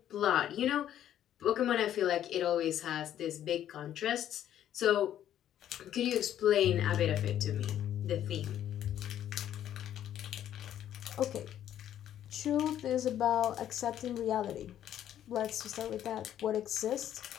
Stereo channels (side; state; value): right; quieter; 11.0 dB